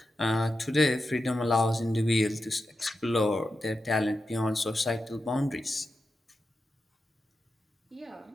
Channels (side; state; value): both; normal; correlation 0.89